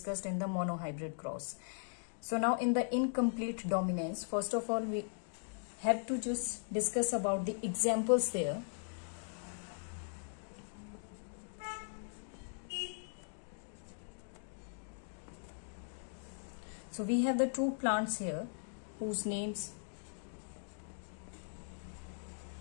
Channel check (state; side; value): silent; right; digital silence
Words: in the monohybrid cross. So now in the incomplete dominance, first of all we have to just discuss about the examples there. So we have the two plants here whose names,